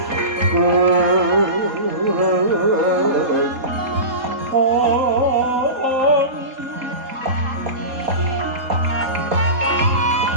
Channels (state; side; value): late; left; 3.8 ms